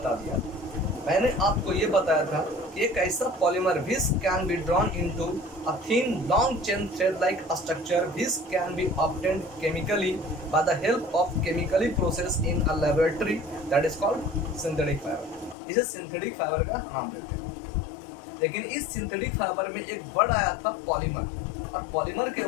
दिया। मैंने आपको ये बताया था कि एक ऐसा polymer which can be drawn into a thin long chain thread like structure which can be obtained chemically bye the help of chemically process in a laboratory, that is called synthetic fibre. इसे synthetic fibre का नाम देते हैं। लेकिन इस synthetic fibre में एक word आया था पॉलीमर, और पॉलीमर के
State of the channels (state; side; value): drops out; right; at 15.6 s